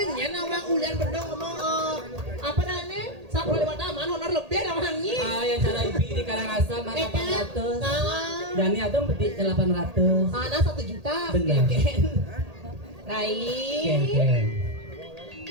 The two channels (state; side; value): late; left; 1.8 ms